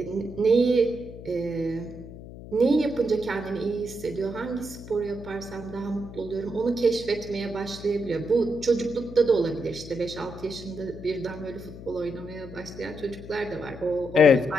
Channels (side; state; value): left; noise; hum, 14 dB below the sound